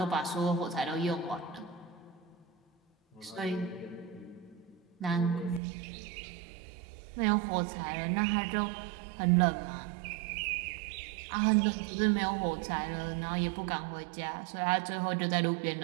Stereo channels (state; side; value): drops out; left; at 5.6 s